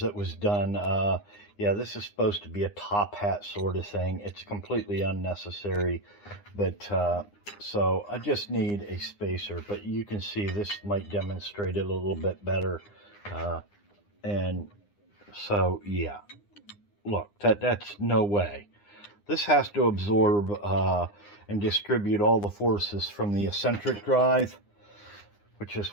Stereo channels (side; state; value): right; late; 9.8 ms